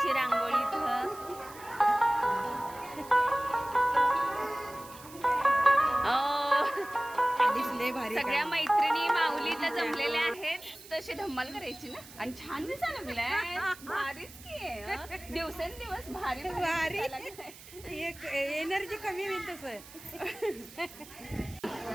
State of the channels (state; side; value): noise; right; hiss, 18 dB below the sound